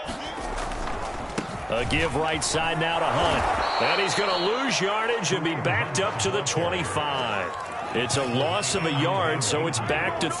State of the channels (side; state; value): both; identical; correlation 1.00